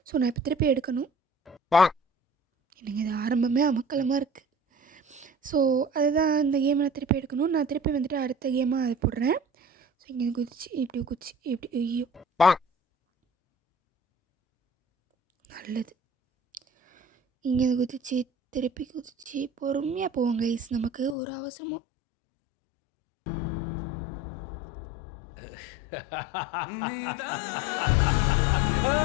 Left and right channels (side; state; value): right; drops out; at 21.2 s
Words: ஸோ நான் இப்போ திருப்பி எடுக்கணும். எனக்கு இது ஆரம்பமே அமக்கலமாக இருக்குது. ஸோ அதுதான் இந்த கேமை நான் திருப்பி எடுக்கணும். நான் திருப்பி வந்துட்டு அடுத்த கேமாக அதை போடுறேன். ஸோ இங்கே குதிச்சு இப்படி ஐயோ நல்லது. இங்கே குதிச்சு திருப்பி குதிச்சு பொறுமையாக போவோம் கைஸ். நமக்கு ஒரு அவசரமும்